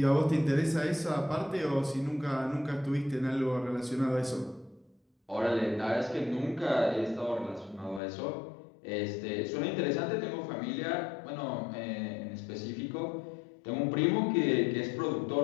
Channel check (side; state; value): right; drops out; at 8.0 s